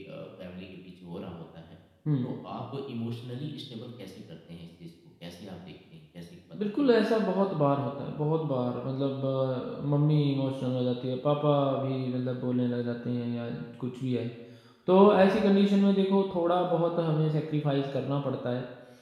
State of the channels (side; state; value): both; identical; correlation 1.00